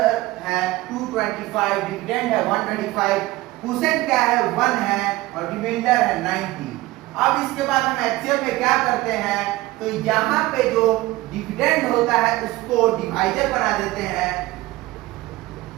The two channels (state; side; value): quieter; left; 18.9 dB